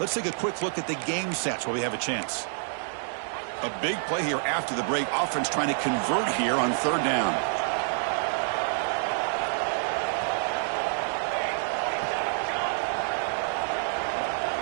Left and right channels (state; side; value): silent; left; digital silence